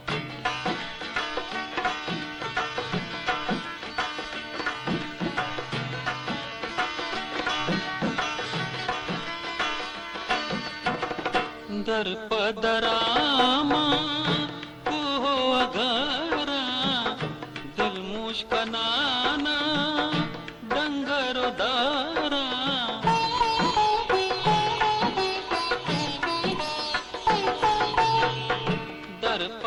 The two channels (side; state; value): both; identical; correlation 1.00